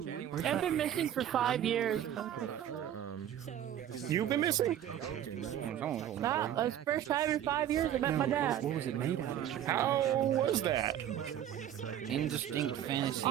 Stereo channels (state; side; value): quieter; left; 10.7 dB